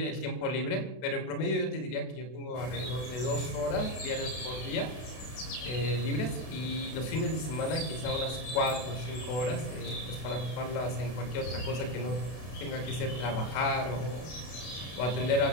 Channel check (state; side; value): late; right; 32 ms